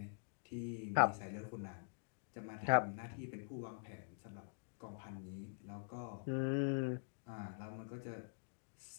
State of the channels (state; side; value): silent; right; digital silence